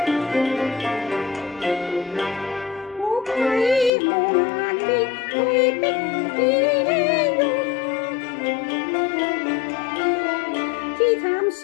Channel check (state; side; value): drops out; right; at 3.9 s